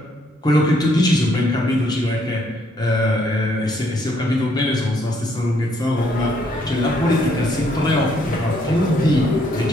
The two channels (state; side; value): normal; both; correlation 0.69